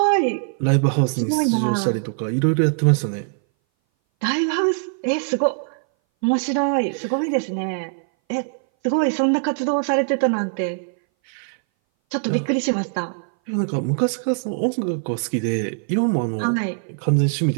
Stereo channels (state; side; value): silent; left; 60 dB below the other